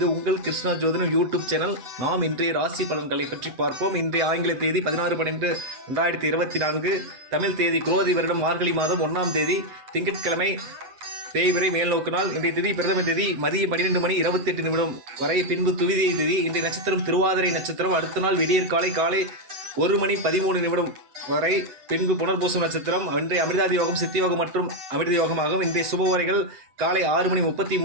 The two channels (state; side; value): late; left; 8.1 ms